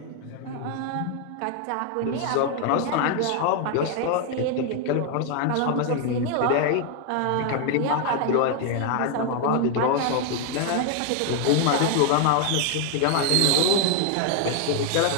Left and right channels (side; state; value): both; different; correlation 0.01